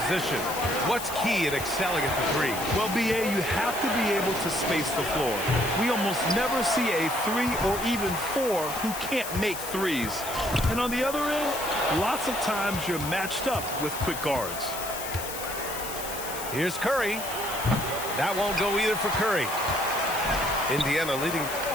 What's key in excelling at the three? Well, BA, you have to be able to space the floor. We almost never see a 3 or even 4 who can't make threes. And on the other end, lots of times you're matched up with quick guards. Here's Curry. That won't go either for Curry. Indiana leading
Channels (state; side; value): noise; left; hiss, 8 dB below the sound